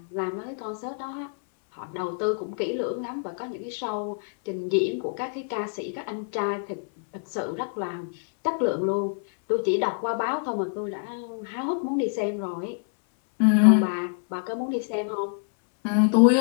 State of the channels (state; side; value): silent; right; 61 dB below the other